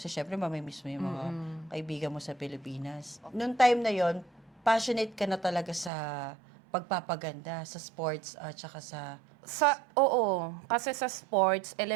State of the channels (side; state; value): left; drops out; at 5.9 s